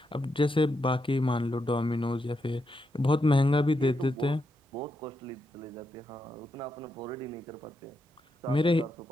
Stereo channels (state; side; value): normal; both; correlation 0.83